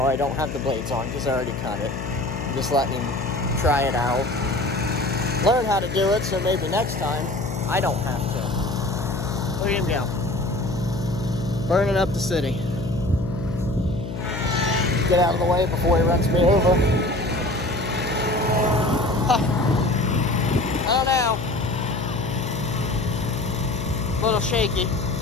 I don't have the blades on because I already cut it. I'm just letting him try it out and learn how to do it, so maybe next time I don't have to. Look at him go. Burning up the city. Get out of the way before he runs me over. I don't know. A little shaky.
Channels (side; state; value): left; noise; hum, 7 dB below the sound